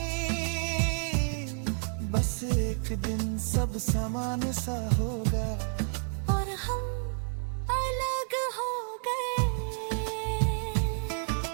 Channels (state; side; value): silent; left; 58 dB below the other